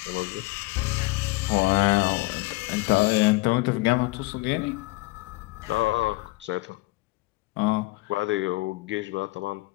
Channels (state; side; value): quieter; right; 22.1 dB